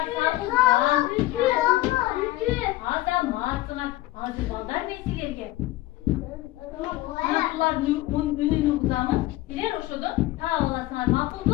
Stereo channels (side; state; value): right; quieter; 17.4 dB